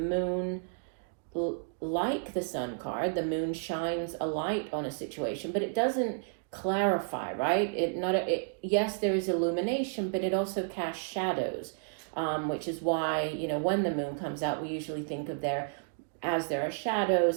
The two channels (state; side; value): silent; left; digital silence